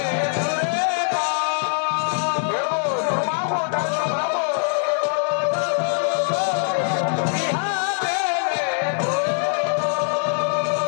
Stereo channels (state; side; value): silent; right; digital silence